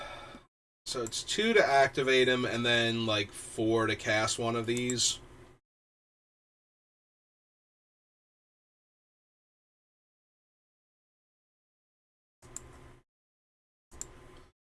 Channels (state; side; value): identical; both; correlation 1.00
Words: So it's 2 to activate him, and then, like, 4 to cast one of these.